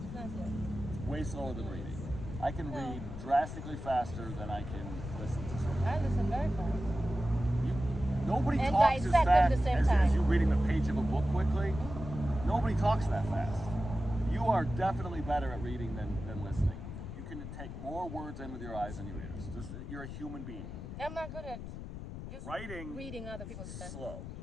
It's not slow. Way slower than reading. I can read drastically faster than I can listen to something. I listen very fast. Nobody And talks as dissect fast at the same as time. you reading the page of a book quickly. Nobody talks that fast. You are definitely better at reading than listening. You can take more words in with your eyes than your ears. You're a human being. I'm not good at just Writing, reading other people's stuff. slow,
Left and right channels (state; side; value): noise; left; rumble, 9 dB below the sound